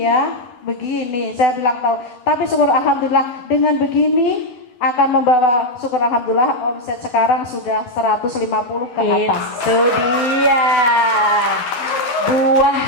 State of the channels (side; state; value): right; late; 12 ms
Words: ya. Begini, saya bilang tahu. Tapi syukur alhamdulillah dengan begini akan membawa syukur alhamdulillah omset sekarang sudah 150 ke atas. Itu dia.